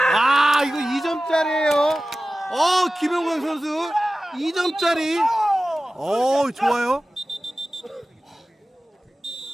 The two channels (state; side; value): normal; both; correlation 0.96